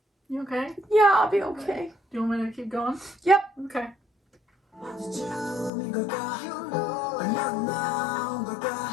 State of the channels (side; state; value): right; drops out; at 5.7 s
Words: You okay? Yeah, I'll be okay. Do you want me to keep going? Yep. Okay.